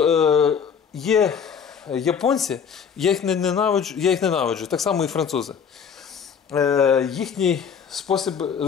є японці, я їх ненавиджу, так само і французи. Їхній спосіб,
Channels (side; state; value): right; quieter; 7.1 dB